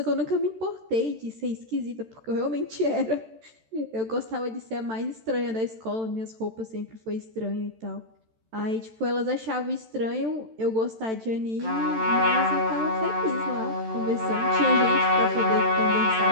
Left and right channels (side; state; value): left; late; 13 ms